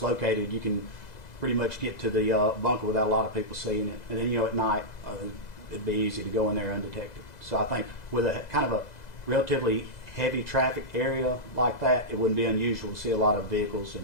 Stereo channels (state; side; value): late; right; 2.0 ms